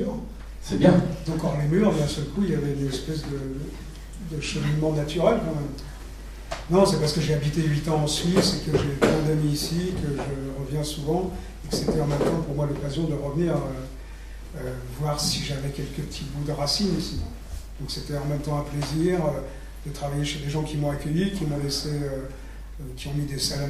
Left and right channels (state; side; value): identical; both; correlation 1.00